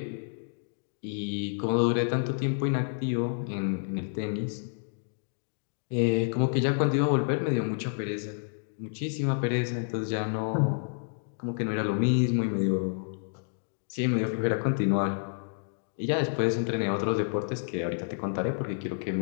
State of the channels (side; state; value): right; silent; digital silence